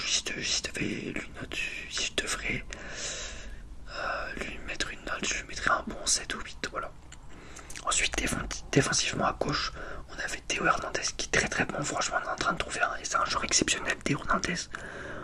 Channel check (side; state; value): both; identical; correlation 1.00